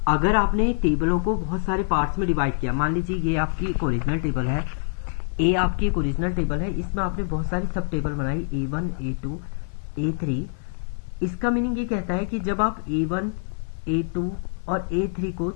अगर आपने टेबलों को बहुत सारे पार्ट्स में डिवाइड किया, मान लीजिए ये आपकी एक ओरिजिनल टेबल है, ए आपकी एक ओरिजिनल टेबल है, इसमें आपने बहुत सारी सब टेबल बनाई A1 A2 A3। इसका मीनिंग ये कहता है कि जब आप A1 A2 और A3 को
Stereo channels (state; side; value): silent; right; 56 dB below the other